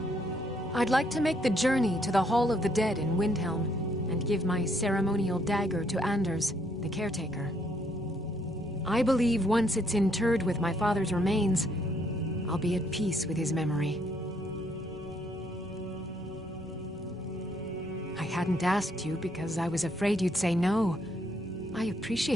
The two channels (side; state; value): both; normal; correlation 0.70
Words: I'd like to make the journey to the Hall of the Dead in Windhelm and give my ceremonial dagger to Anders, the caretaker. I believe once it's interred with my father's remains, I'll be at peace with his memory. I hadn't asked you because I was afraid you'd say no. I